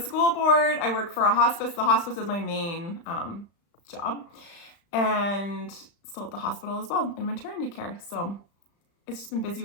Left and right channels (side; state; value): right; late; 35 ms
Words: board. I work for a hospice. The hospice is my main job. And still at the hospital as well in maternity care. So it's just been busy